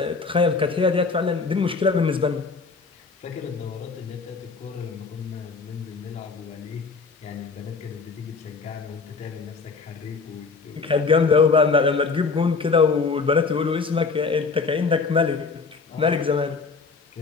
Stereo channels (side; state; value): right; quieter; 4.6 dB